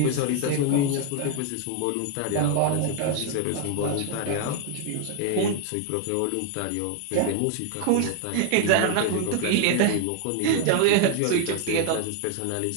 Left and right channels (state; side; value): different; both; correlation 0.00